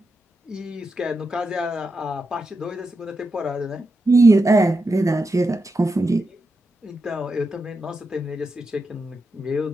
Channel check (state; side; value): normal; both; correlation 0.87